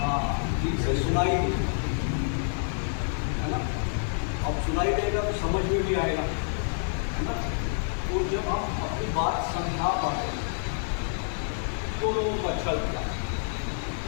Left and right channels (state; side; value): silent; right; digital silence